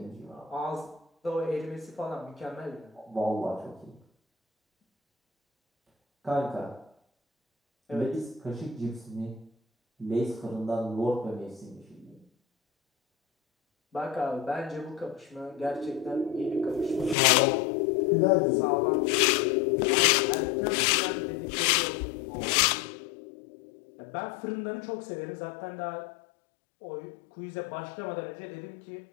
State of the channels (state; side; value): drops out; right; at 17.2 s